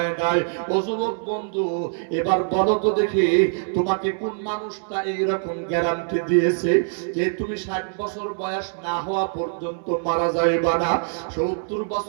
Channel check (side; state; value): left; silent; digital silence